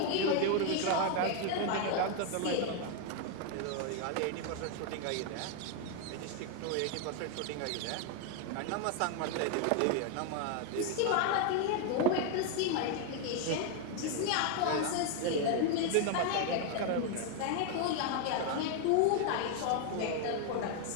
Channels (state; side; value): different; both; correlation 0.00